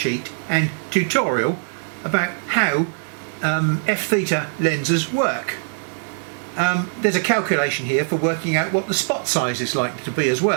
and tutorial about how f-theta lenses work. There's a calculation here for working out what the spot size is likely to be as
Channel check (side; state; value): left; silent; digital silence